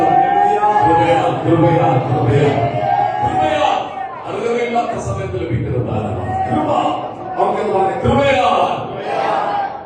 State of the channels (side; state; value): both; identical; correlation 1.00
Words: അറിവില്ലാത്ത സമയത്ത് ലഭിക്കുന്ന ദാനമാണ് കൃപ. അവർക്കെന്ന് പറഞ്ഞ കൃപയാ.